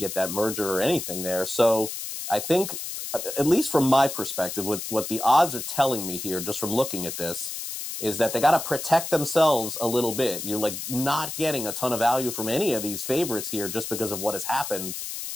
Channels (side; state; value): left; noise; hiss, 6 dB below the sound